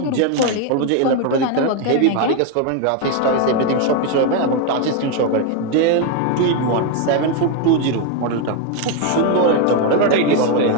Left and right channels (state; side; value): different; both; correlation 0.01